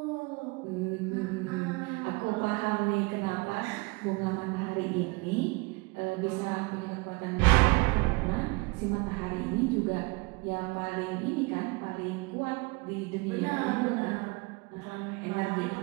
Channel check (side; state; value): left; quieter; 27.3 dB